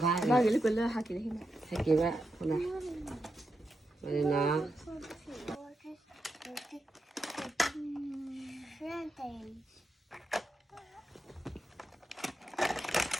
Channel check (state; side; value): normal; both; correlation 0.86